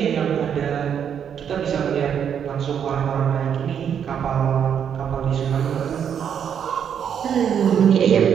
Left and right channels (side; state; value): left; quieter; 8.2 dB